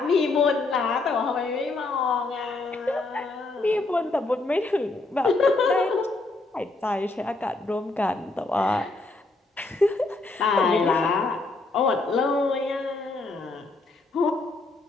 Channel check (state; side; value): quieter; right; 3.3 dB